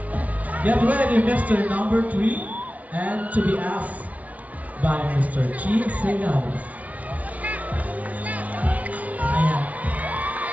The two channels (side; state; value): left; late; 0.070 ms